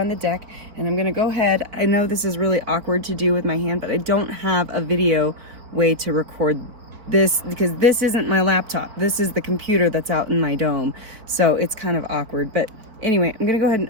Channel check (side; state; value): left; late; 4.5 ms